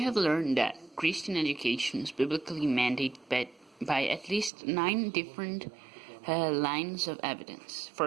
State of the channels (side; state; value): left; drops out; at 4.5 s